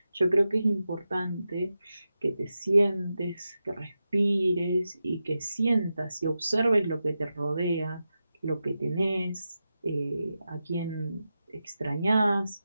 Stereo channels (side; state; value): both; inverted; correlation -0.91